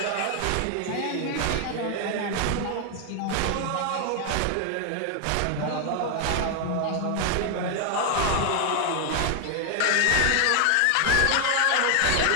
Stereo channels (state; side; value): different; both; correlation 0.00